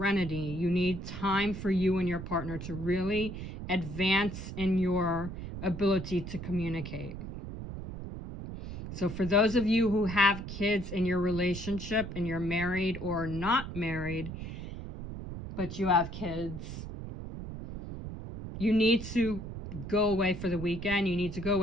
You need time for you and your partner to really advance in your ability to communicate. So for those of you who have kids in your relationship and you're married or not married, but you have kids, you need to go away for the weekend. You need to go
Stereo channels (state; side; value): noise; right; rumble, 8 dB below the sound